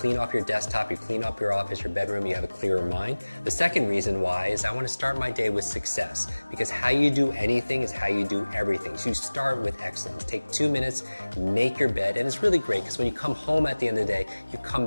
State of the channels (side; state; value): both; inverted; correlation -1.00